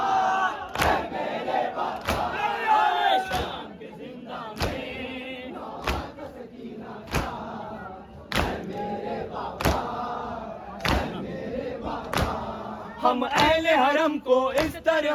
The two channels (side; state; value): both; identical; correlation 1.00